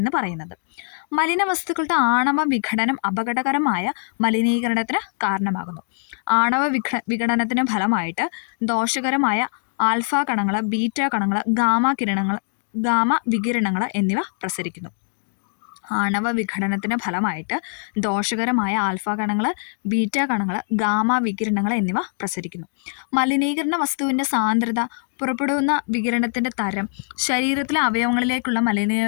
പറയുന്നത്. മലിന വസ്തുക്കളുടെ ആണവ വിഘടനം അപകടകരമായ മലിനീകരണത്തിന് കാരണമാകുന്നു. ആണവ വിഘടനത്തിന് ഫലമായിട്ട് ദോഷകരമായ ആൽഫ കണങ്ങൾ, ബീറ്റ കണങ്ങൾ, ഗാമ വികിരണങ്ങൾ എന്നിവ പ്രസരിക്കുന്നു. ആണവ വിഘടനത്തിന് ഫലമായിട്ട് ദോഷകരമായ ആൽഫ കണങ്ങൾ, ബീറ്റ കണങ്ങൾ, ഗാമ വികിരണങ്ങൾ എന്നിവ പ്രസരിക്കുന്നു. മലിനീകരണ വസ്തുവിൻ്റെ സാന്ദ്രത, പുറപ്പെടുന്ന വികിരണത്തിൻ്റെ തരം, ശരീരത്തിലെ അവയവങ്ങളിലേക്കുള്ള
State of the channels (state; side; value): silent; right; 62 dB below the other